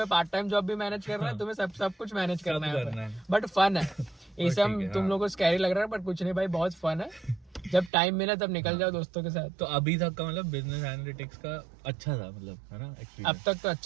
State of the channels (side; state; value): left; drops out; at 7.9 s